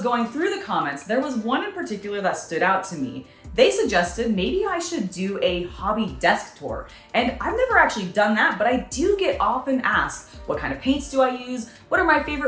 going through the comments, there was one in particular that stood out to me. They suggested maybe I should do a hobby desk tour, and I've never actually done that, but I do get often asked, what kind of paints do I use? What are my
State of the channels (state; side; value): identical; both; correlation 1.00